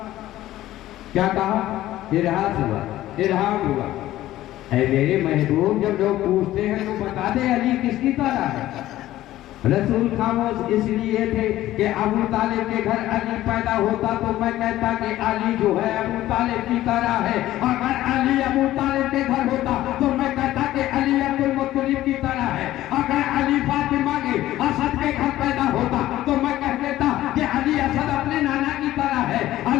क्या कहा? इरहास हुआ, इरहाम हुआ। ऐ मेरे महबूब, जब लोग पूछते हैं तो बता दे अली किसकी तरह है। रसूल खामोश इसलिए थे कि अबू तालिब के घर अली पैदा होता तो मैं कहता कि अली जो है अबू तालिब की तरह है। अगर अली अबू तालिब के घर होता तो मैं कहता कि अली अब्दुल मुत्तलिब की तरह है। अगर अली फातिमा के असद के घर पैदा होता तो मैं कह देता कि अली असद अपने नाना की तरह है।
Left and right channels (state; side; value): quieter; right; 14.7 dB